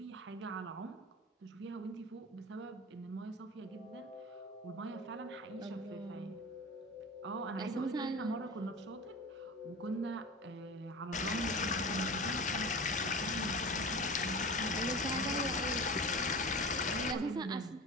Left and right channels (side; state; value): both; normal; correlation 0.32